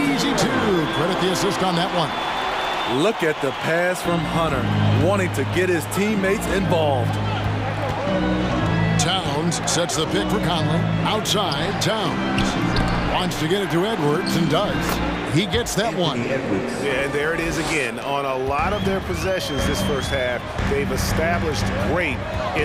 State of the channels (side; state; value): both; identical; correlation 1.00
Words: two. Credit the assist on that one. Look at the pass from Hunter, wanting to get his teammates involved. Towns sets the pick for Conley. Outside, Towns wants to get it to Edwards and does. He gets that one. Yeah, and there it is again. On a lot of their possessions this first half, they've established great